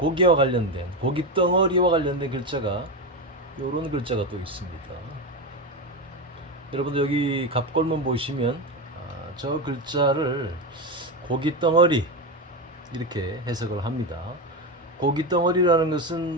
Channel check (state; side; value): normal; both; correlation 0.15